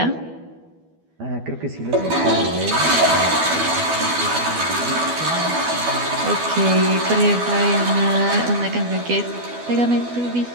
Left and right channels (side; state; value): left; late; 12 ms